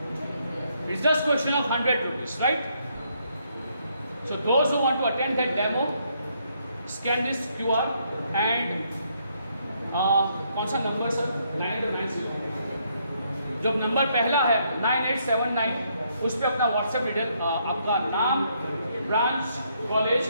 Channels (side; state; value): both; inverted; correlation -0.73